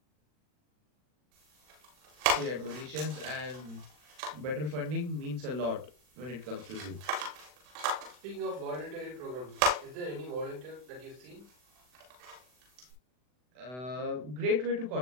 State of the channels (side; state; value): left; late; 40 ms